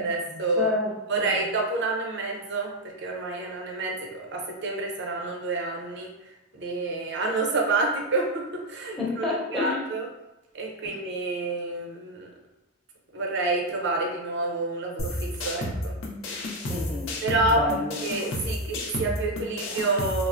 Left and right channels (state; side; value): normal; both; correlation 0.04